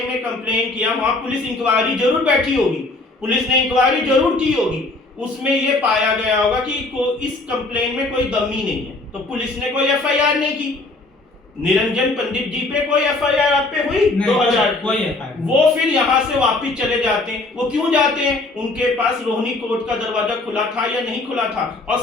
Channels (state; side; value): quieter; right; 3.1 dB